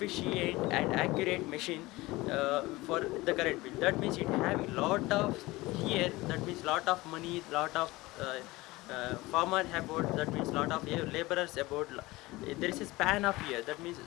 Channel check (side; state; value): right; quieter; 20.4 dB